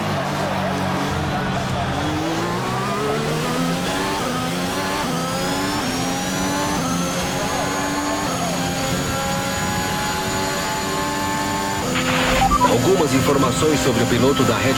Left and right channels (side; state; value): both; identical; correlation 1.00